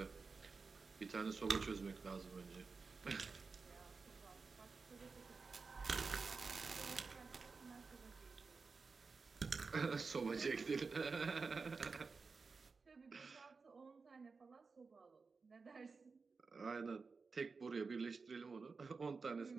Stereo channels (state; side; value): quieter; left; 4.6 dB